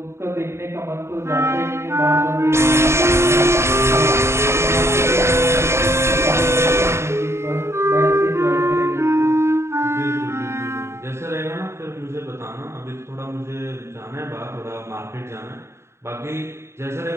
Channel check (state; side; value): late; left; 0.13 ms